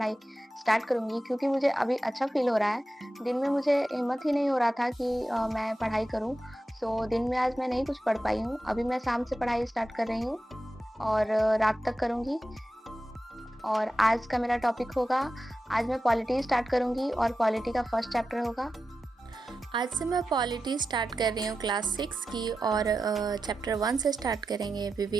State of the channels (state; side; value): normal; both; correlation 0.91